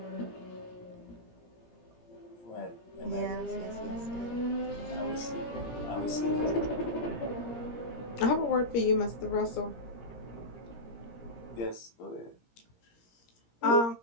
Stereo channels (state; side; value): late; right; 17 ms